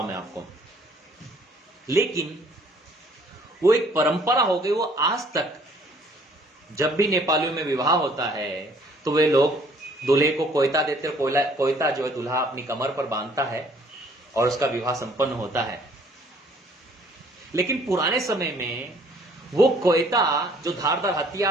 मैं आपको। लेकिन वो एक परंपरा हो गई, वो आज तक जब भी नेपालियों में विवाह होता है तो वे लोग दूल्हे को कोयता देते हैं। कोयता जो है दूल्हा अपनी कमर पर बांधता है और उसका विवाह संपन्न होता है। लेकिन पुराने समय में वो कोयता जो धारदार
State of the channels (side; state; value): both; normal; correlation 0.59